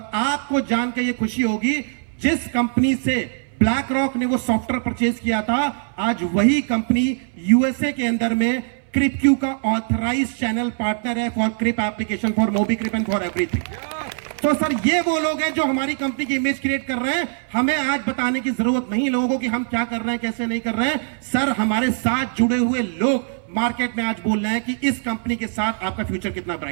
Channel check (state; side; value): silent; left; 63 dB below the other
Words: आपको जान के ये खुशी होगी, जिस कंपनी से ब्लैक रॉक ने वो सॉफ्टवेयर परचेज किया था, आज वही कंपनी यूएसए के अंदर में क्रिपक्यू का ऑथराइज्ड चैनल पार्टनर है for Crip application, for MobiCrip and for everything. तो सर ये वो लोग हैं जो हमारी कंपनी की इमेज क्रिएट कर रहे हैं। हमें आज बताने की जरूरत नहीं लोगों को कि हम क्या कर रहे हैं, कैसे नहीं कर रहे हैं। सर हमारे साथ जुड़े हुए लोग मार्केट में आज बोल रहे हैं कि इस कंपनी के साथ आपका फ्यूचर कितना